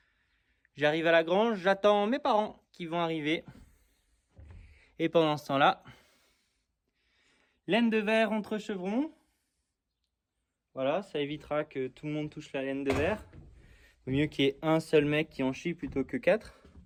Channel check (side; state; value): both; identical; correlation 1.00